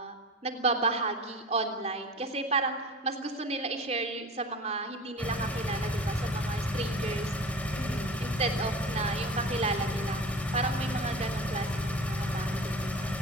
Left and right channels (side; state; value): both; normal; correlation 0.36